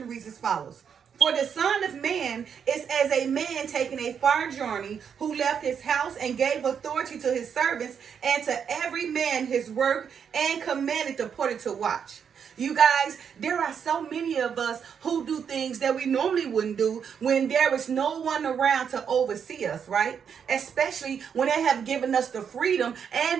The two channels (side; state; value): left; quieter; 7.4 dB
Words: reads as follows. For the Son of Man is as a man taking a far journey, who left his house and gave authority to his servants and to every man his work, and commanded the porter to watch. You guys, there are so many of us who do things that we normally wouldn't do when there is no one around to oversee us, right? Especially when they have given us the freedom